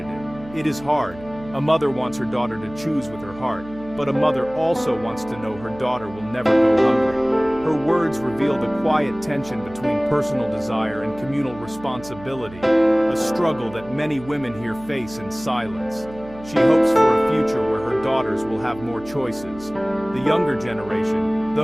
it. It is hard. A mother wants her daughter to choose with her heart, but a mother also wants to know her daughter will never go hungry." Her words reveal the quiet tension between personal desire and communal responsibility, a struggle that many women here face in silence. She hopes for a future where her daughters will have more choices. The younger generation,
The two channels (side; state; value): right; noise; hum, 18 dB below the sound